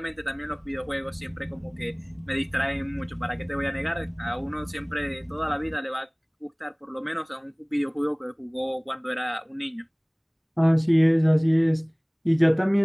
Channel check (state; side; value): identical; both; correlation 1.00